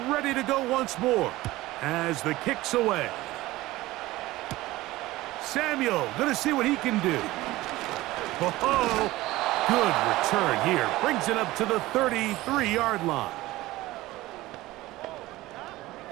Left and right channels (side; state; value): left; quieter; 18.1 dB